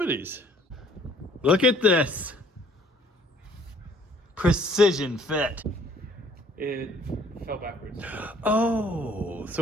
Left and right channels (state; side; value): normal; both; correlation 0.57